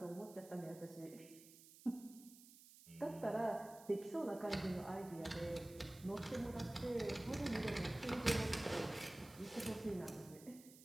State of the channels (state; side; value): noise; right; hiss, 19 dB below the sound